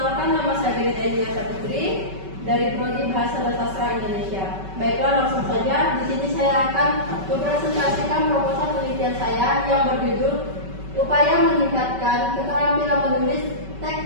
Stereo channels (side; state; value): left; late; 5.2 ms